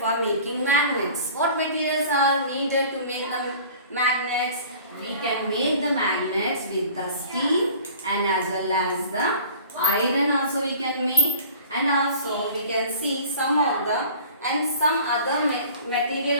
for making magnets? What materials are needed to make the magnets? We can make the magnets with the steel and as well as the iron also we can make, and also we can see some of the and some other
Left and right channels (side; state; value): both; inverted; correlation -0.46